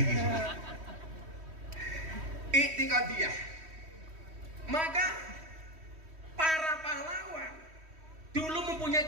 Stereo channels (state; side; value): late; left; 3.1 ms